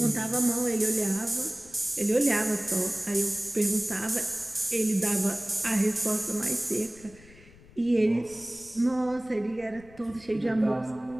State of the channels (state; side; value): noise; left; rumble, 23 dB below the sound